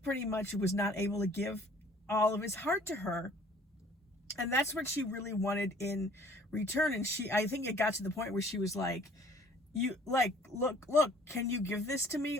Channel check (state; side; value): normal; both; correlation 0.55